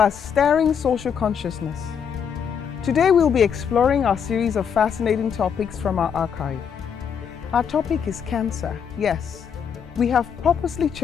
stirring social consciousness. Today we'll be exploring our series of fascinating topics from our archive. Our topic is cancer. Yes, we have purposely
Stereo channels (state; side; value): quieter; right; 7.4 dB